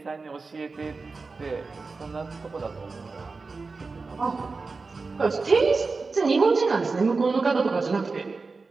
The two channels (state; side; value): quieter; left; 4.1 dB